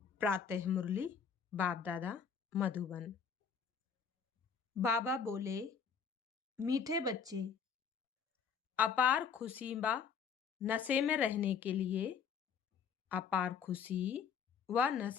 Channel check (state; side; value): quieter; right; 6.5 dB